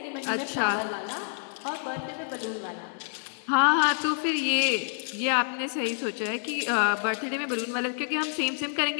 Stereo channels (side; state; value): right; silent; digital silence